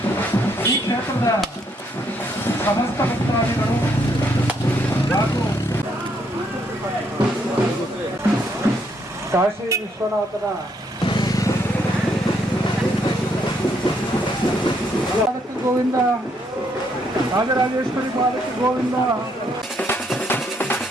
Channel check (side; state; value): both; normal; correlation 0.72